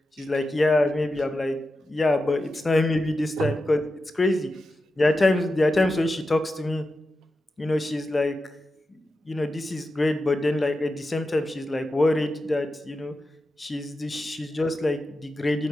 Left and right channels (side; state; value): both; normal; correlation 0.91